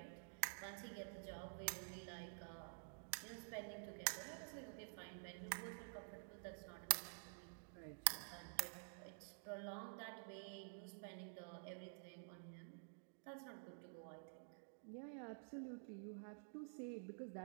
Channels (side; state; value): left; silent; digital silence